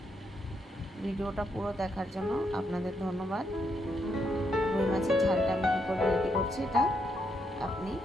ভিডিওটা পুরো দেখার জন্য আপনাদের ধন্যবাদ। রুই মাছের ঝালটা আমি কী করে রেডি করছি এটা আপনি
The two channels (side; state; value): both; normal; correlation 0.78